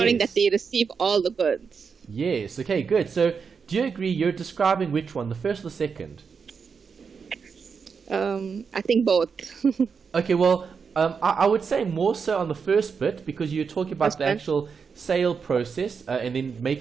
that they receive all the goods. Yes. Okay, good. So do you agree you're describing which one, the first or the second? I think both. Okay, well, I would say more so on the first bit because you're talking about the actual sale process and then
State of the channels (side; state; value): left; quieter; 5.8 dB